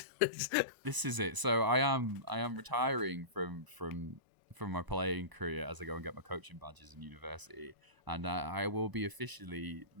This is it. So I am retiring from my playing career as I go and get my coaching badges in university, and I will be officially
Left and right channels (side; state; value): left; late; 1.0 ms